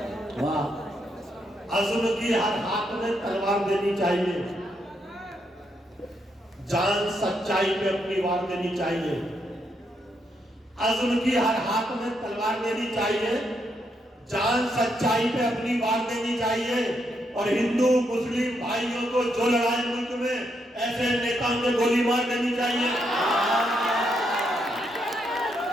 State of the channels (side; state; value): both; normal; correlation 0.78